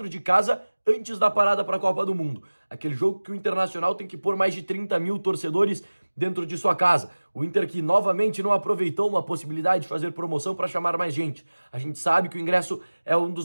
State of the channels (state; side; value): inverted; both; correlation -1.00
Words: de casa, antes da parada para a Copa do Mundo. Aquele jogo que o Internacional tem que pôr mais de 30 mil torcedores dentro de sua casa. O Inter que novamente não aproveitou uma possibilidade de fazer promoção para chamar mais gente. A gente sabe que o ingresso é um